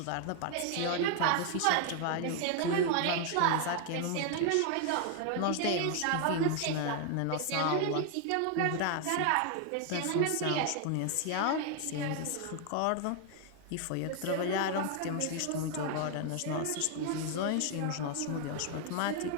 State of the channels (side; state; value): both; different; correlation 0.00